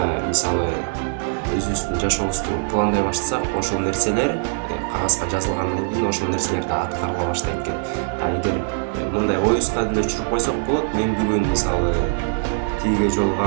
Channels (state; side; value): silent; left; digital silence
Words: мисалы өзүбүздүн жашообузду пландай баштасак, ошол нерселер кагазга жазылгандан кийин ошол нерселер да аткарыла баштайт экен. А эгер мындай оюбузга деле түшүрүп койсок болот, мен бүгүн мисалы тиге